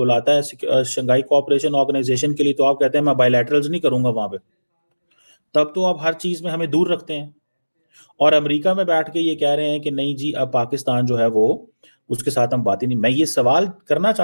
है शंघाई कोऑपरेशन ऑर्गेनाइजेशन के लिए, तो आप कहते हैं मैं बायलैटरल्स नहीं करूंगा वहां पे। तब तो आप हर चीज में हमें दूर रखते हैं। और अमेरिका में बैठ के ये कह रहे हैं कि नहीं जी, अब पाकिस्तान जो है वो, उसके साथ हम बात ही नहीं। मैं ये सवाल करना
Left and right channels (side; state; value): both; inverted; correlation -1.00